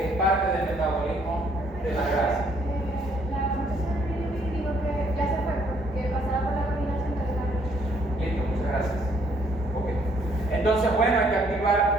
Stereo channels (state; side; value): normal; both; correlation 0.66